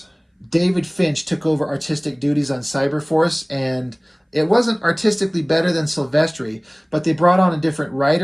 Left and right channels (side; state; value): both; identical; correlation 1.00